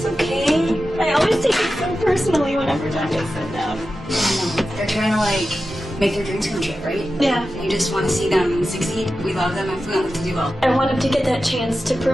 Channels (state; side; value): normal; both; correlation 0.92